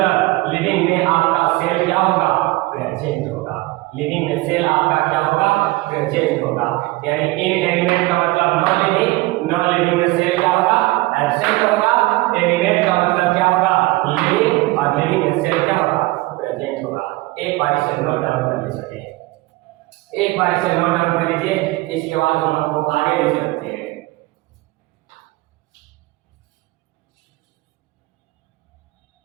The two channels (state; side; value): quieter; left; 20.8 dB